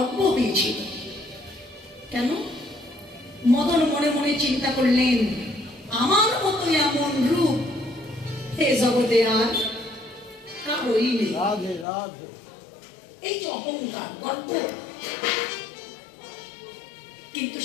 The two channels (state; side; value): drops out; right; at 11.9 s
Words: হয়েছিল। কেন? মদন মনে মনে চিন্তা করলেন, আমার মতো এমন রূপ হে জগতে আর কারোই নেই। এই যে অহংকার, গর্ব। কিন্তু